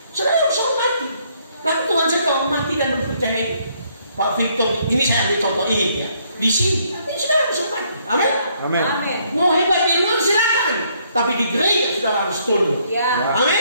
saudara harus mati. Tapi Tuhan sedang mati dan mempercayai Pak Victor. Ini saya ambil contoh ini ya, di sini. Tapi saudara harus mati, amin. Amin. Amin. Mau hebat di luar silakan, tapi di gereja saudara harus tunduk, Ya.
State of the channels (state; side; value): inverted; both; correlation -0.69